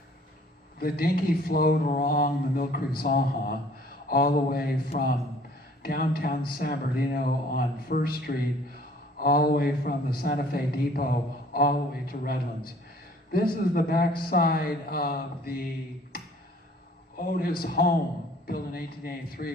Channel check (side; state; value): both; normal; correlation 0.55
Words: The Dinky flowed along the Mill Creek Zanja all the way from downtown San Bernardino on 1st Street, all the way from the Santa Fe Depot, all the way to Redlands. This is the backside of the Otis home, built in